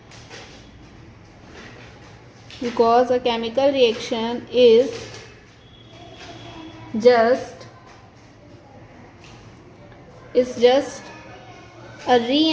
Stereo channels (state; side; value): identical; both; correlation 1.00